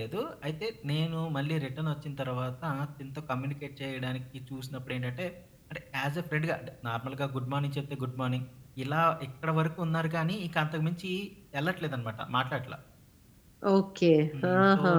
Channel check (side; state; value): both; identical; correlation 1.00